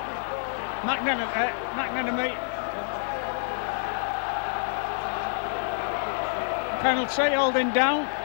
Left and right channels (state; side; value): silent; right; 60 dB below the other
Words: McNenemy. Penalty, holding down.